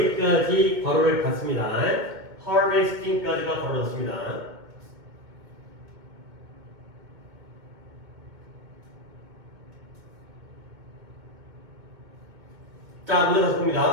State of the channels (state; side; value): late; left; 2.0 ms